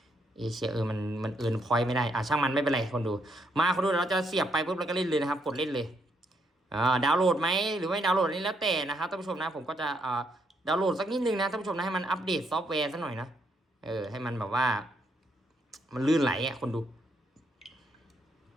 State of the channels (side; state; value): both; normal; correlation 0.75